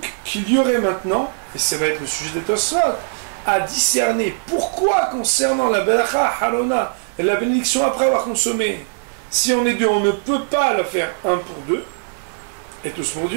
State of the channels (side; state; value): left; silent; 58 dB below the other